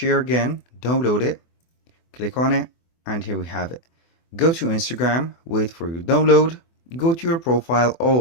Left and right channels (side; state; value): right; late; 24 ms